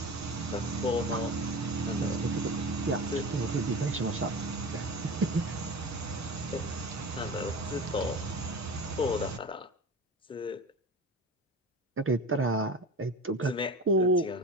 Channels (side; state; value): both; normal; correlation 0.31